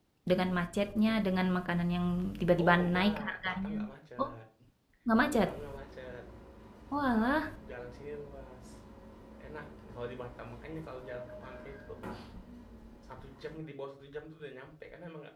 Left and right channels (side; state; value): both; identical; correlation 1.00